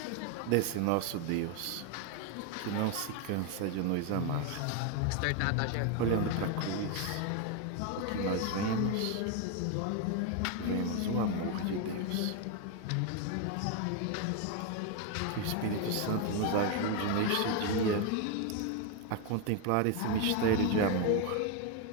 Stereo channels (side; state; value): both; different; correlation 0.01